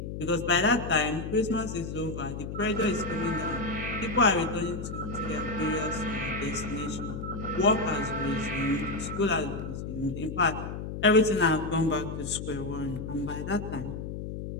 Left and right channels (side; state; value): left; noise; hum, 6 dB below the sound